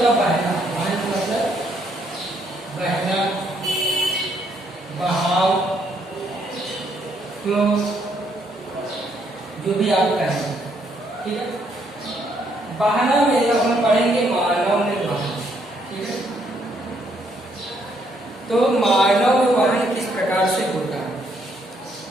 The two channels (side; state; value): both; normal; correlation 0.71